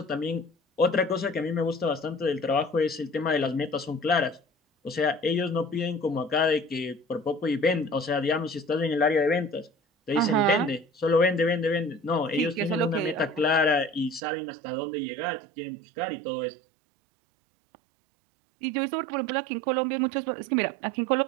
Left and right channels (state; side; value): drops out; left; at 14.2 s